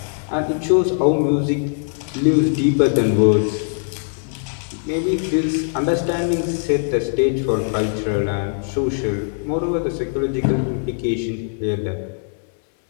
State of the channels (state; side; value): silent; right; 62 dB below the other